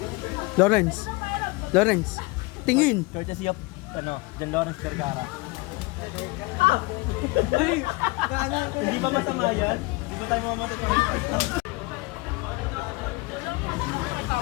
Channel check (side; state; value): right; quieter; 24.5 dB